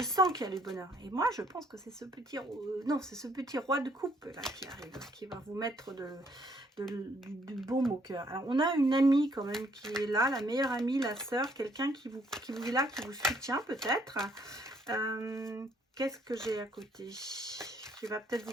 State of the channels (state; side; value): normal; both; correlation 0.66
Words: sens qu'il y a le bonheur. Et moi, je pense que c'est ce petit... non, c'est ce petit roi de coupe là qui arrive. Qui va vous mettre du baume au cœur. Alors, on a une amie quand même qui est là. La meilleure amie, la sœur. Quelqu'un qui vous est là, qui vous soutient peut-être. Qu'est-ce que j'ai à côté? Qui va peut-être